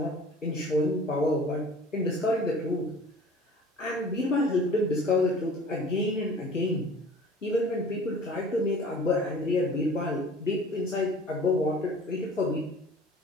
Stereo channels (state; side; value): normal; both; correlation 0.46